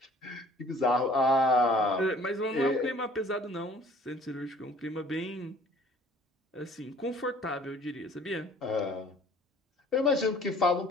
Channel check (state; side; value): normal; both; correlation 0.53